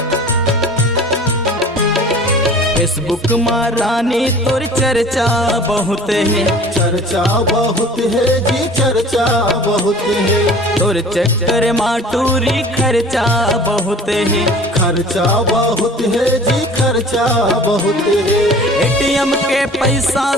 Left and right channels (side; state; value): both; normal; correlation 0.45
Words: फेसबुक में रानी तोर चर्चा बहुत है, चर्चा बहुत है जी चर्चा बहुत है, तोर चक्कर माटूरी खर्चा बहुत है, खर्चा बहुत है जी खर्चा बहुत है। एटीएम के पैसा